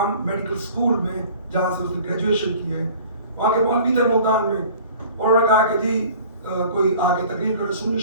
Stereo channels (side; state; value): both; inverted; correlation -0.47